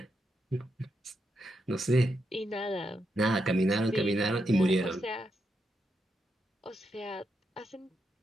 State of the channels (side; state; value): both; normal; correlation 0.83